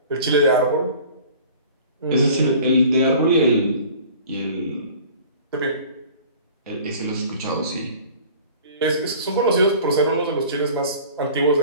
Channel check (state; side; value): inverted; both; correlation -0.46